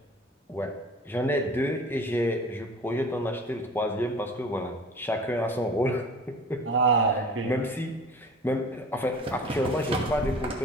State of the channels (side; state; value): both; normal; correlation 0.43